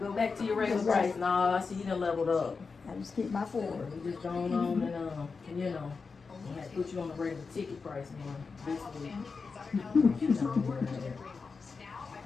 back to your regular price. Nah, I see you done leveled up. I just keep my Ford. You just going on and you know, we had to put you on the regular ticket price now. This week. You know where it is.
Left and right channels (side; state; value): right; quieter; 4.8 dB